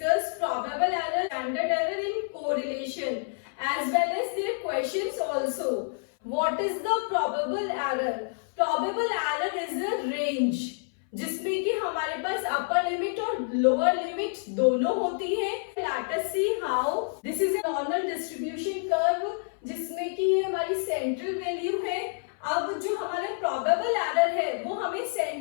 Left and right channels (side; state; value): right; silent; 59 dB below the other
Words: discuss probable error, standard error in correlation as well as their questions also. What is the probable error? Probable error is a range जिसमें कि हमारे पास upper limit और lower limit दोनों होती है. Let us see how. This is a normal distribution curve जिसमें कि ये हमारी सेंट्रल वैल्यू है. अब जो हमारा प्रोबेबल एरर है वो हमें